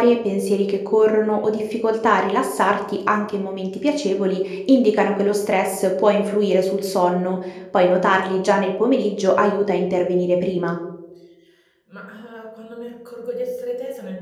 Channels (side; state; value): both; identical; correlation 1.00